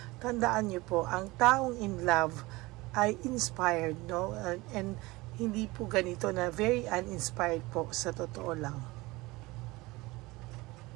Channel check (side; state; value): left; quieter; 21.5 dB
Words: Tandaan niyo po, ang taong in love ay inspired, no? And hindi po ganito na very uninspired po, sa totoo lang.